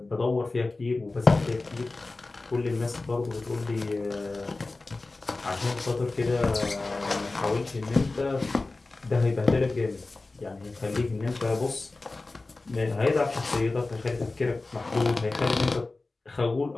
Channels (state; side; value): quieter; right; 3.3 dB